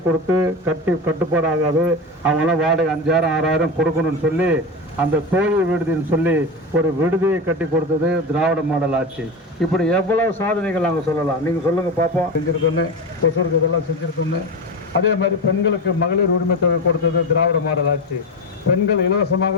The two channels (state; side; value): normal; both; correlation 0.21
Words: கொடுத்து கட்டுப்பாடாகாது, அவங்களாம் வாடகை 5000 6000 கொடுக்கணும்னு சொல்லி அந்த தோழி விடுதின்னு சொல்லி ஒரு விடுதியை கட்டி கொடுத்தது திராவிட மாடல் ஆட்சி. இப்படி எவ்வளவு சாதனைகள் நாங்கள் சொல்லலாம். நீங்கள் சொல்லுங்க பார்ப்போம். செஞ்சிருக்கோன்னு கொசூருக்கு இதெல்லாம் செஞ்சிருக்கோன்னு. அதே மாதிரி பெண்களுக்கு மகளிர் உரிமை தொகை கொடுத்தது திராவிட மாடல் ஆட்சி. பெண்கள்